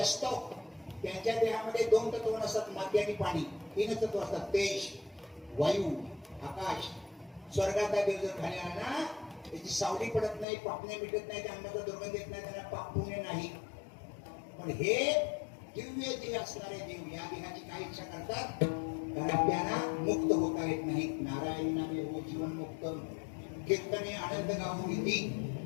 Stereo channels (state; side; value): drops out; right; at 10.5 s